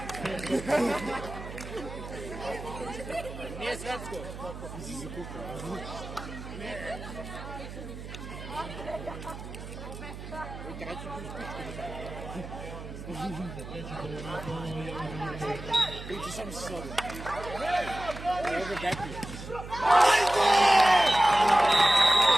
Nije svetsko. Si zakukao. Biće sam se sobi. Evo ga Bepi.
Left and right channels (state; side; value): noise; right; hum, 11 dB below the sound